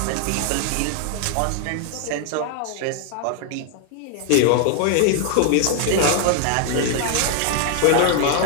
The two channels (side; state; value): both; different; correlation 0.00